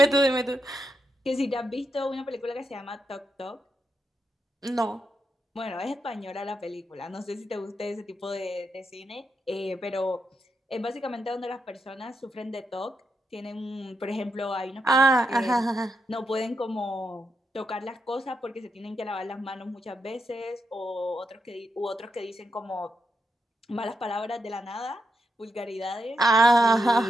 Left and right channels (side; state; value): both; normal; correlation 0.83